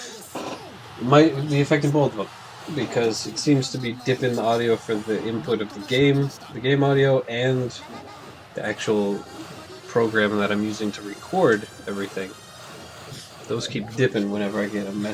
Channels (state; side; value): identical; both; correlation 1.00